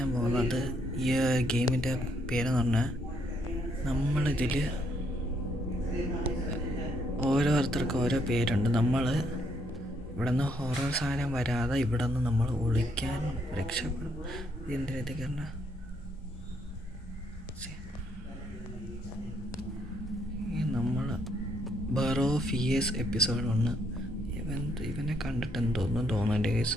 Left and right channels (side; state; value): both; normal; correlation 0.72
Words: പോകുന്നത് ഈ ഗെയിമിൻ്റെ പേരെന്ന് പറഞ്ഞാൽ നമ്മളിതിൽ ഓരോരുത്തർക്കും ഓരോ പേരുണ്ട്. നമ്മൾ ഇവിടെ നിന്ന് ഹൊറർ സാധനം വരാതെ ഇവിടെ നിന്ന് നമ്മൾ ഒളിക്കാൻ രക്ഷപ്പെടും. എന്തിനകത്തേക്ക് പറഞ്ഞാൽ നമ്മൾ ബറോ ഫിയേഴ്സ് എപ്പിസോഡ് 1 ഇവനെ കണ്ടിട്ടെന്ന് തോന്നുന്നുണ്ട് കേസ്